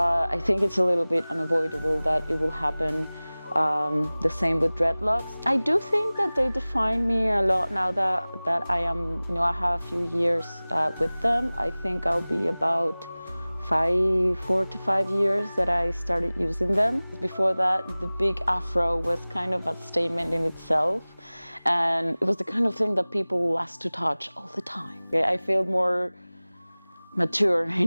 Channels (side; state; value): both; inverted; correlation -0.99